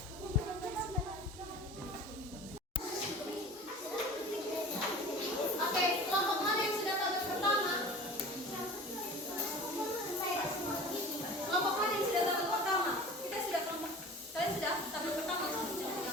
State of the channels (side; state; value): both; normal; correlation 0.39